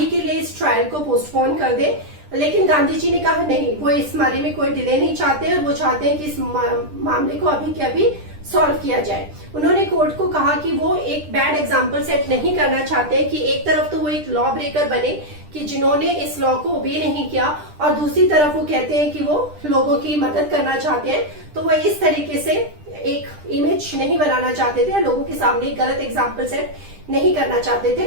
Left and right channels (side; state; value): left; late; 10 ms